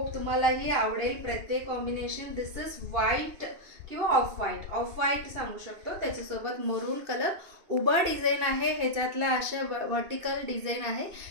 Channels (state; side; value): late; left; 2.6 ms